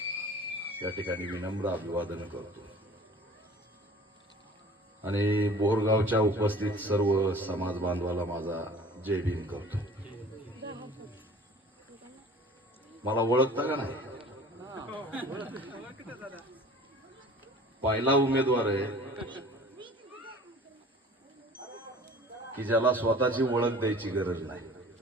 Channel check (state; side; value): normal; both; correlation 0.46